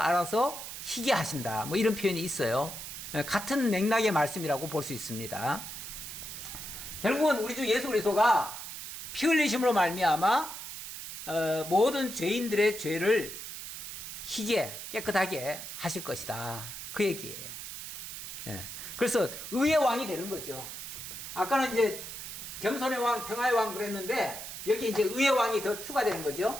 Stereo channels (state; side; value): noise; right; hiss, 9 dB below the sound